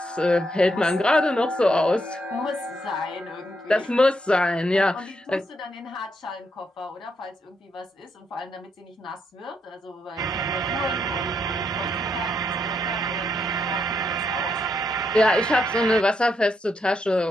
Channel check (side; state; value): both; normal; correlation 0.78